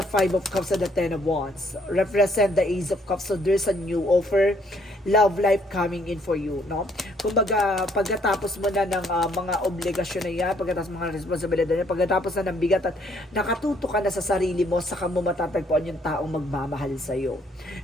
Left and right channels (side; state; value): both; normal; correlation 0.66